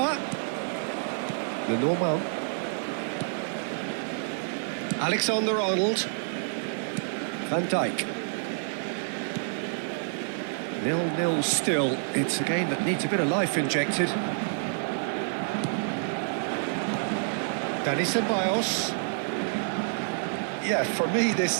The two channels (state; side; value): silent; left; digital silence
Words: Lenormand. Alexander-Arnold. Van Dijk. 0-0 still. It's a game that needs a bit of life injected. Dani Ceballos. Yeah, for me